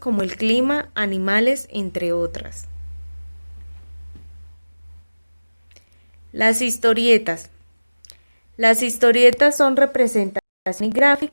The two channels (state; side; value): inverted; both; correlation -1.00